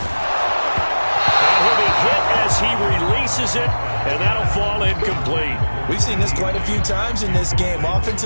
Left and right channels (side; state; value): both; inverted; correlation -1.00